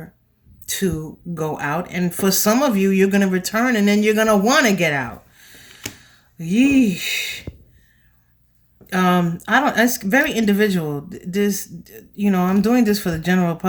to go out. And for some of you, you're going to return and then you're going to want to get out. Yeesh. It's very individual. This, I'm doing this for the general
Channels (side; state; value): both; identical; correlation 1.00